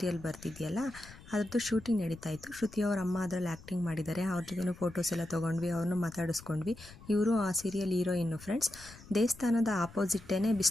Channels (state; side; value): noise; left; rumble, 19 dB below the sound